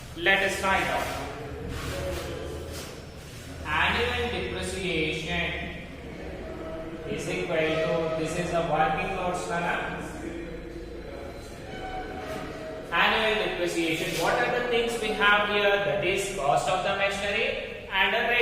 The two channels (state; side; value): identical; both; correlation 1.00